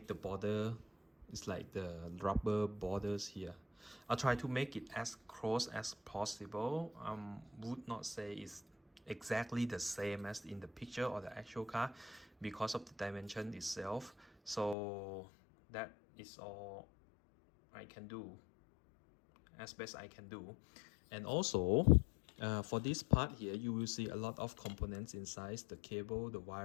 the border. It's like the rubber borders here. I'll try to make it as close as possible. Would not say it's exactly the same as in the picture or the actual car because of the dimension itself. So that is all I can do, as best I can do. And also for this part here, you will see a lot of components inside, the cable, the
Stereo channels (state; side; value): drops out; right; at 14.8 s